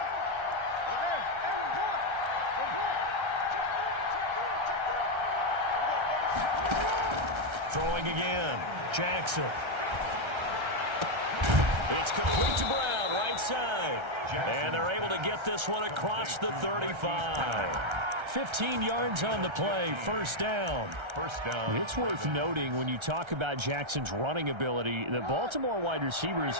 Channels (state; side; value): late; left; 1.3 ms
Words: Throwing again. Jackson. It's complete to Brown, right side. And they're able to get this one across the 35. 15 yards on the play, 1st down. It's worth noting when you talk about Jackson's running ability, the Baltimore wide receivers